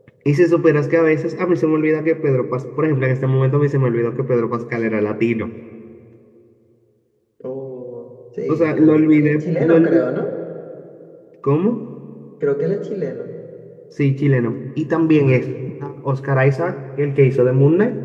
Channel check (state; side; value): identical; both; correlation 1.00